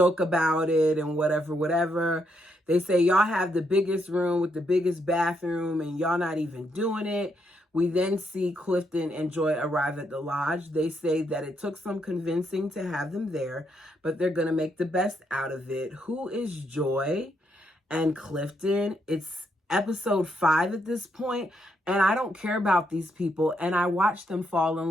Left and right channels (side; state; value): both; normal; correlation 0.77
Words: about it and whatever. They say, y'all have the biggest room with the biggest bathroom and y'all not even doing it. We then see Clifton and Joi arrive at the lodge. They say that it took some convincing to have them there, but they're going to make the best out of it. Who is Joi and Clifton? It's episode 5 at this point, and I don't care about these people, and I watched them fall